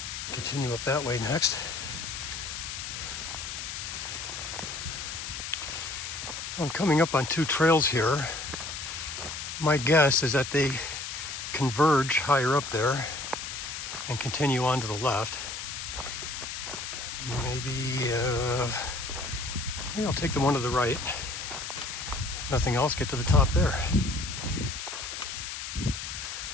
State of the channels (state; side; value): noise; left; hiss, 6 dB below the sound